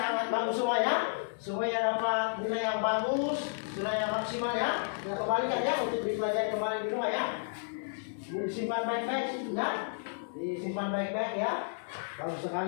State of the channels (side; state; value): right; silent; digital silence